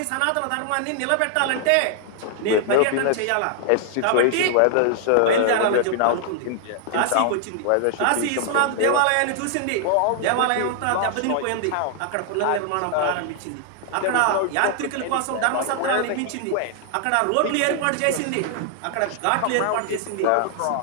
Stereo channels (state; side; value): different; both; correlation 0.00